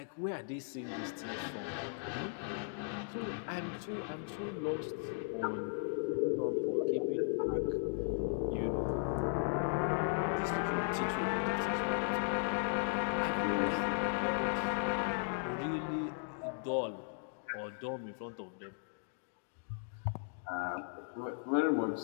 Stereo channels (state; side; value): silent; right; digital silence